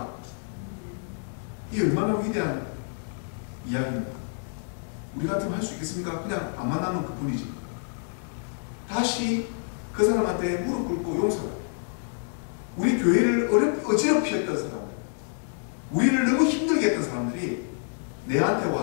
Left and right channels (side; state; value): right; silent; digital silence